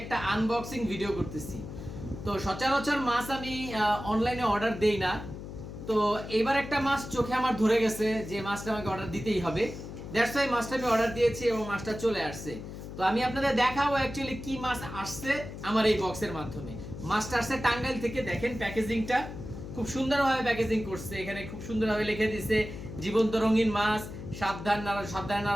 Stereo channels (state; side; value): noise; left; hum, 10 dB below the sound